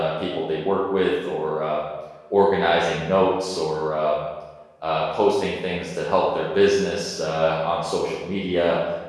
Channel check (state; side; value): identical; both; correlation 1.00